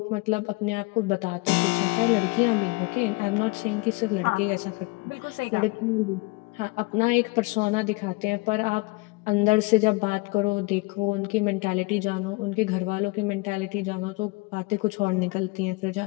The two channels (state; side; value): quieter; right; 25.4 dB